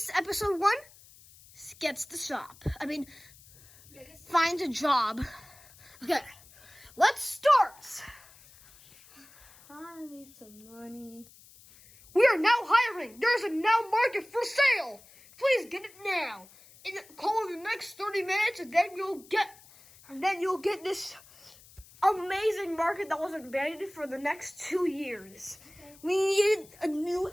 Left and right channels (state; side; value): noise; left; hiss, 24 dB below the sound